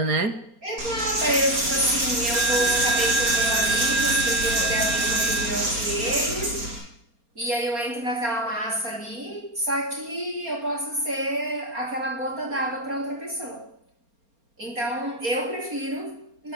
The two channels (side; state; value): left; late; 4.3 ms